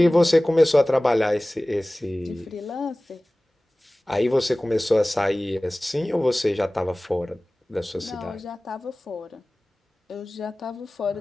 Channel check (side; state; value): both; normal; correlation 0.98